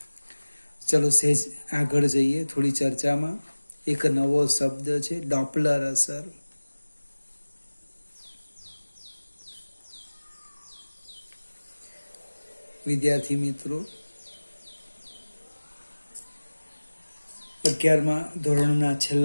ચલો સહેજ આગળ જઈએ થોડી ચર્ચામાં. એક નવો શબ્દ છે ડોપલર અસર. વિદ્યાર્થી મિત્રો, 11મા ધોરણના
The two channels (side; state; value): both; inverted; correlation -1.00